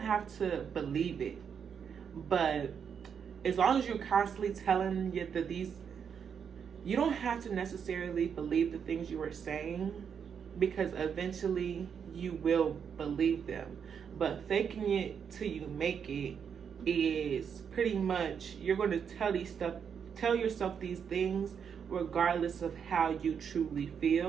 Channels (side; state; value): left; quieter; 7.2 dB